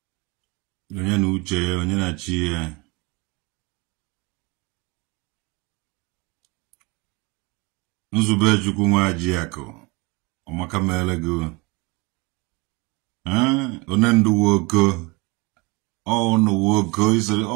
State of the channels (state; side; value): quieter; left; 25.9 dB